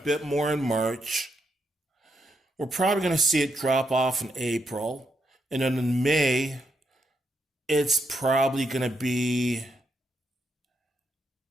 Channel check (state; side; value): normal; both; correlation 0.80